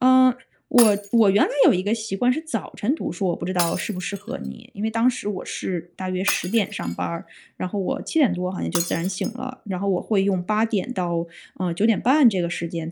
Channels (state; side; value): identical; both; correlation 1.00